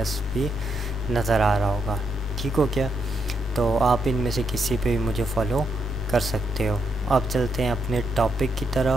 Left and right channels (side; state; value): both; normal; correlation 0.79